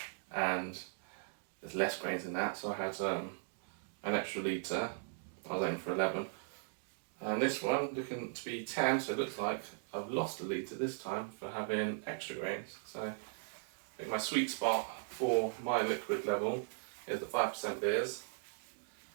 and there's less grains in that, so I had an extra litre. I was aiming for 11, and this one looking to be 10, so it looks like I've lost a litre this time for having extra grains. So I think my sweet spot for my liquid level is the 5% beers.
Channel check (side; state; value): left; silent; digital silence